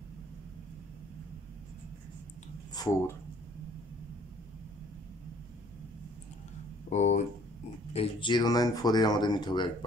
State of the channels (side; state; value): both; normal; correlation 0.57